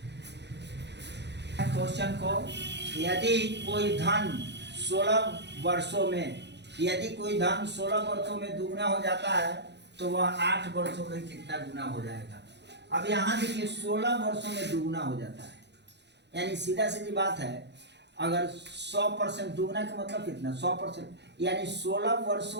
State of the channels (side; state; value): left; late; 0.50 ms